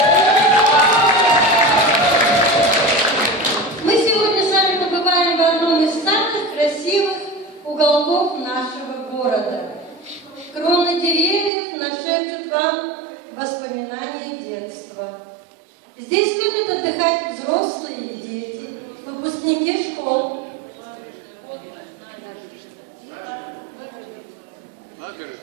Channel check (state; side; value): drops out; left; at 11.5 s